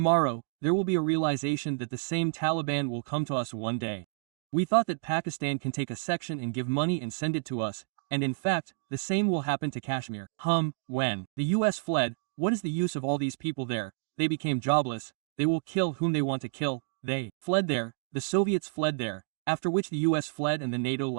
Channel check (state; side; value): silent; left; digital silence